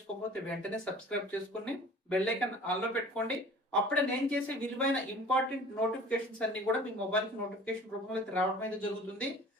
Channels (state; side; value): normal; both; correlation 0.46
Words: వెంటనే సబ్స్క్రైబ్ చేసుకుని బెల్ ఐకాన్ ఆన్లో పెట్టుకోండి. అప్పుడే నేను చేసే విలువైన ఇంపార్టెంట్ నోటిఫికేషన్స్ అన్ని కూడా మీ మొబైల్కి నోటిఫికేషన్ రూపంలో అయితే రావడం అయితే జరుగుతుంది.